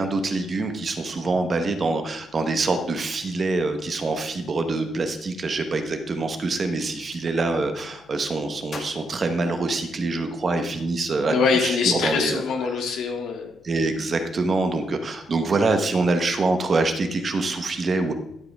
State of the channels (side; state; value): left; noise; hum, 30 dB below the sound